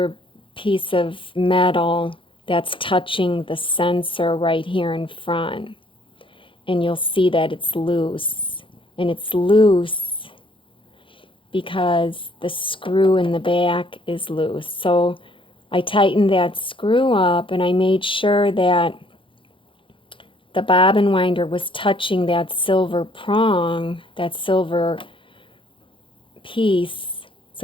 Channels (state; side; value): late; right; 0.25 ms